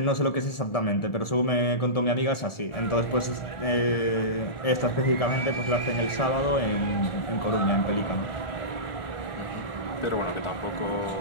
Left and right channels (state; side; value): late; right; 1.4 ms